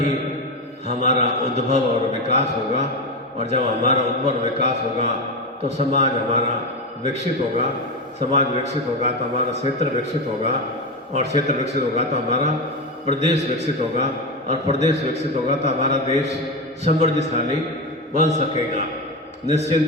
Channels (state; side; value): normal; both; correlation 0.16